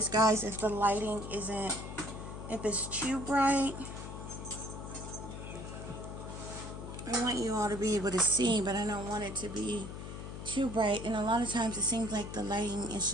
guys if the lighting isn't, if it's too bright. I want you all to be able to see, but I don't want it to be too bright. And a lot of times it seems like the lighting is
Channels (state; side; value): noise; left; hum, 9 dB below the sound